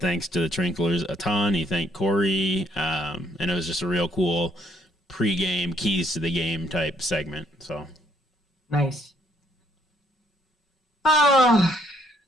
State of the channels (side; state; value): both; normal; correlation 0.67